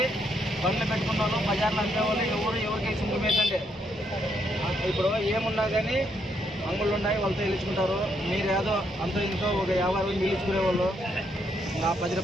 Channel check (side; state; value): both; normal; correlation 0.75